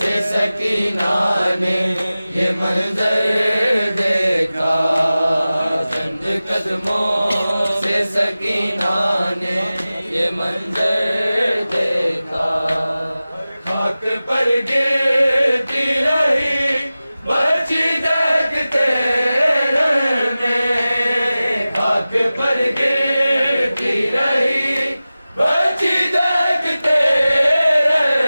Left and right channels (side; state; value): both; inverted; correlation -0.96